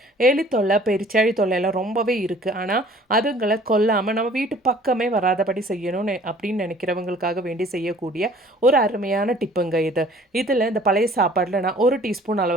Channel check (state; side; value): normal; both; correlation 0.52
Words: எலி தொல்லை, பெருச்சாழி தொல்லை எல்லாம் ரொம்பவே இருக்குது. ஆனால் அதுங்களை கொல்லாமல் நம்ம வீட்டு பக்கமே வராதபடி செய்யணும்னு அப்படின்னு நினைக்கிறவங்களுக்காக வேண்டி செய்யக்கூடிய ஒரு அருமையான டிப்புங்க இது. இதில் இந்த பழைய சாப்பாடில் நான் 1 டீஸ்பூன்